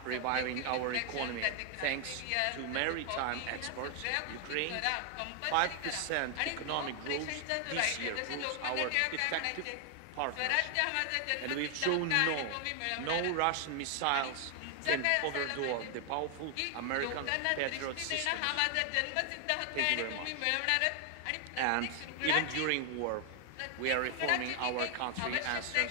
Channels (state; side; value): different; both; correlation 0.00